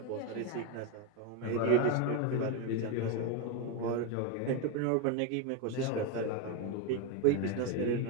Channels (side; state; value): both; different; correlation 0.03